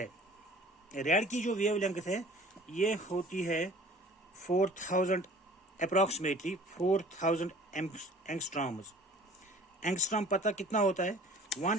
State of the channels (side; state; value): both; normal; correlation 0.48